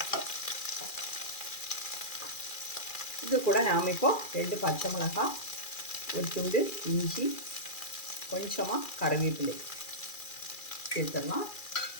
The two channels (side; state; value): right; late; 2.4 ms